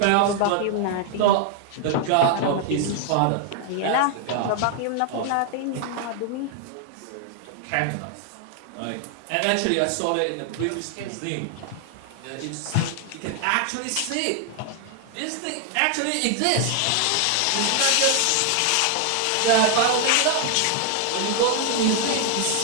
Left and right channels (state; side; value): different; both; correlation 0.00